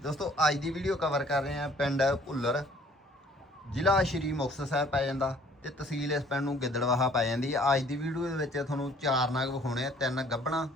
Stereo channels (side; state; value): both; normal; correlation 0.57